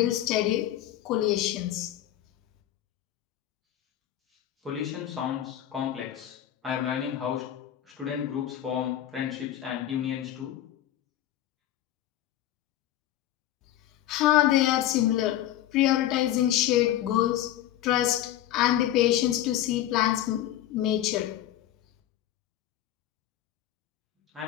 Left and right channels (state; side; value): quieter; right; 12.6 dB